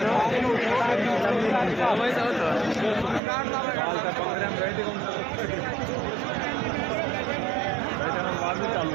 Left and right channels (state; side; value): drops out; left; at 3.2 s